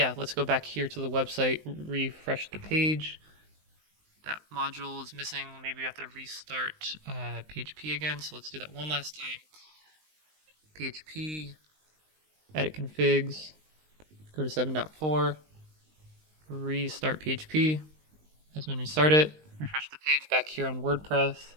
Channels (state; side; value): late; left; 19 ms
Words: let's go back here to the website, refresh the page. That module is missing. Maybe we have to restart PHP again. So let's do that one last time. PHP, edit configs, go to 7.4, restart PHP. Has been restarted. Refresh the page back here on WordPress.